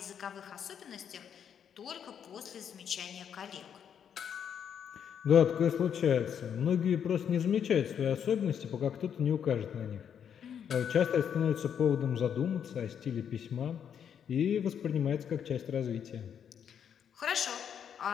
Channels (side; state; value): right; quieter; 8.3 dB